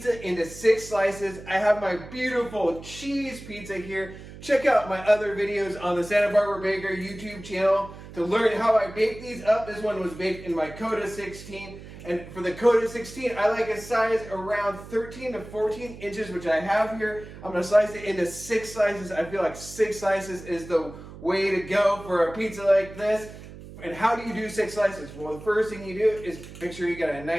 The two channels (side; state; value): right; noise; hum, 15 dB below the sound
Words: into 6 slices. I have my beautiful cheese pizza here. Check out my other videos on the Santa Barbara Baker YouTube channel to learn how I bake these up. This one was baked in my Koda 16. And for the Koda 16, I like a size around 13 to 14 inches, which I have here. I'm going to slice it into 6 slices. I feel like 6 slices is the way to go for a pizza like this. And how do you do 6 slices? Well, the first thing you do is make sure you got a